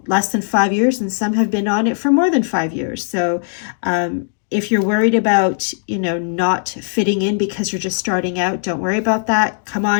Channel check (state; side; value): silent; right; digital silence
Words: less than 5 years, and some have been on it for more than 5 years. So if you're worried about, not fitting in because you're just starting out, don't worry about that. Come